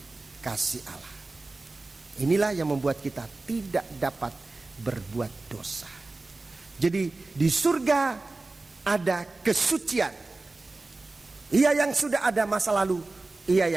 kasih Allah. Inilah yang membuat kita tidak dapat berbuat dosa. Jadi di surga ada kesucian. Ia yang sudah ada masa lalu, ia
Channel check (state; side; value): quieter; left; 3.3 dB